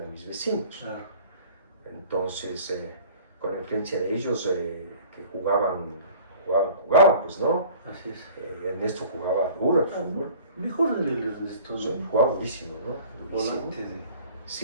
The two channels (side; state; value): both; inverted; correlation -0.47